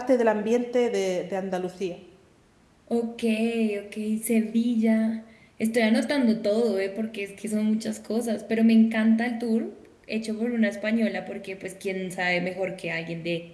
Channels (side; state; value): both; identical; correlation 1.00